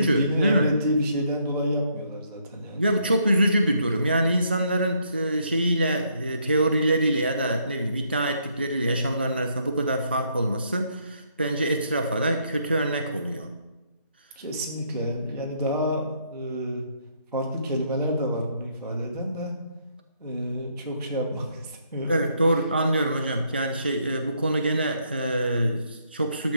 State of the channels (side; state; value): both; inverted; correlation -0.72